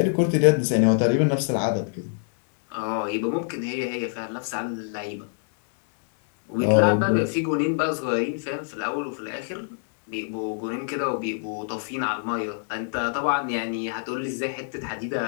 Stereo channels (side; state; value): right; silent; digital silence